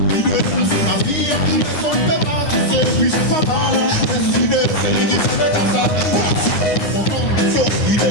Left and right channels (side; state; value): right; late; 9.6 ms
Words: l'idée c'est ma vie. Les gens ne pas qui c'est, puis c'est pas mal. L'idée c'est l'idée, c'est le temps. Sophie de